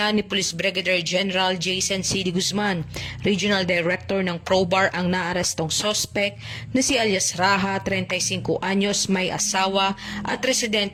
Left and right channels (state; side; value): identical; both; correlation 1.00